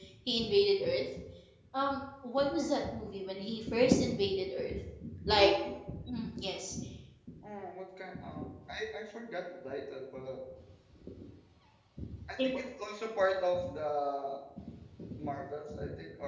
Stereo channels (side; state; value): both; identical; correlation 1.00